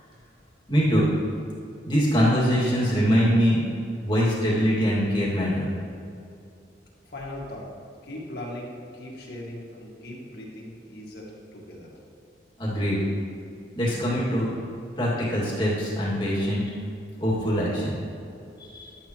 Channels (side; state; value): both; normal; correlation 0.77